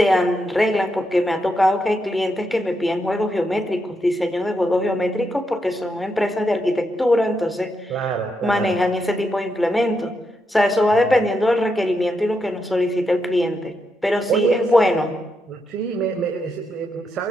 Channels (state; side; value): normal; both; correlation 0.83